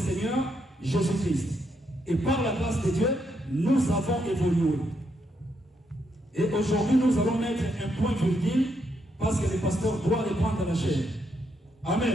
Jésus-Christ. Et par la grâce de Dieu, nous avons évolué. Et aujourd'hui, nous allons mettre un point virgule parce que le pasteur doit reprendre la chair.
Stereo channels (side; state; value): both; normal; correlation 0.78